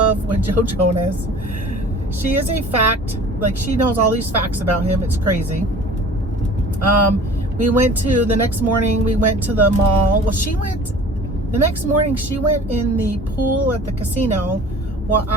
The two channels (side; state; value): both; normal; correlation 0.45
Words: with Joe Jonas. She is a fact, like she knows all these facts about him. It's crazy. The next morning, we went to the mall. Well, the next morning, she went in the pool at the casino while